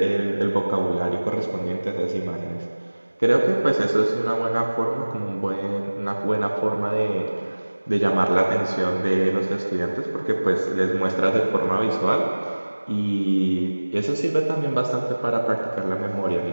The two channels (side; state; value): both; inverted; correlation -1.00